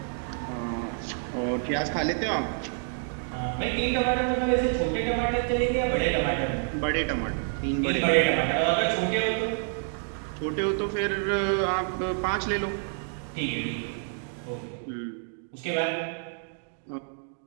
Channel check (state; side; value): silent; left; 59 dB below the other